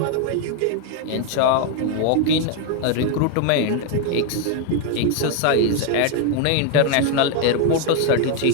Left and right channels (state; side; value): different; both; correlation 0.01